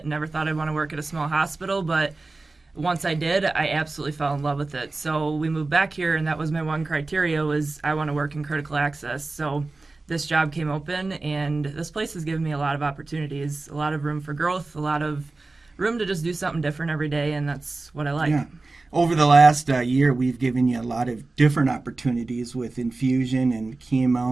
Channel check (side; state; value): left; quieter; 3.4 dB